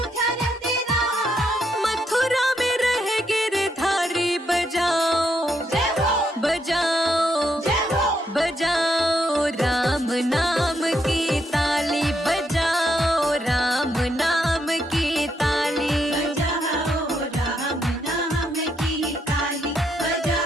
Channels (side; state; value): both; normal; correlation 0.77